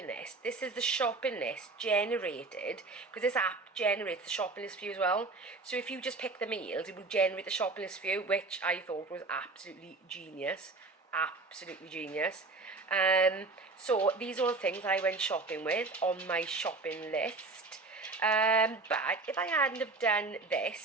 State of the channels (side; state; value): left; quieter; 3.6 dB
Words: list, this is the shopping list generated, because this app generates the shopping list for you as well. So if you just pick the meals, it will generate the shopping list for you, which I thought was absolutely genius. Absolutely genius. So these are all the things I went shopping with on my shopping list. But if I hadn't have done